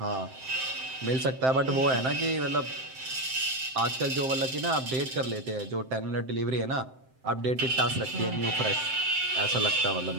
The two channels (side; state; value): left; late; 7.7 ms